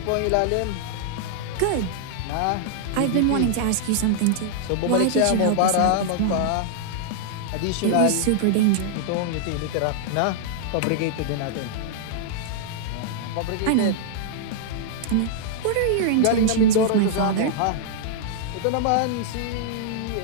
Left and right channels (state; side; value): different; both; correlation -0.01